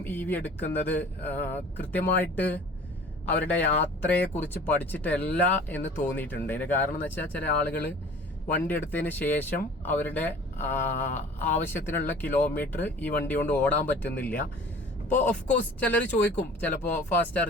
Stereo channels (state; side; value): normal; both; correlation 0.46